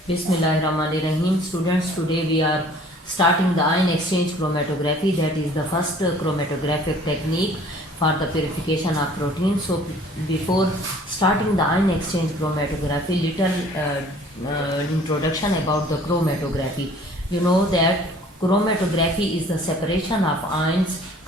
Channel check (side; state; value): both; normal; correlation 0.53